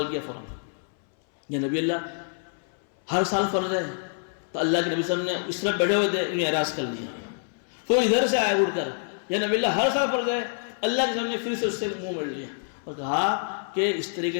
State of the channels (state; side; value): silent; right; 60 dB below the other